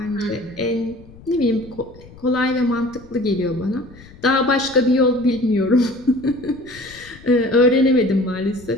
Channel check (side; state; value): left; noise; rumble, 21 dB below the sound